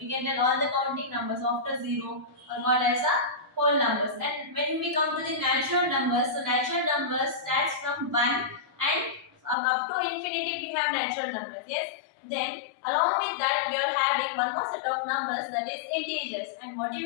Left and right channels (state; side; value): drops out; right; at 9.6 s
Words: can tell all the counting numbers after 0 are called as a whole numbers. And when we come to the natural numbers, so natural numbers starts from 1 and up to infinity we have natural numbers. Yes, then along with that we are having one more set of numbers, that is integers. And what do you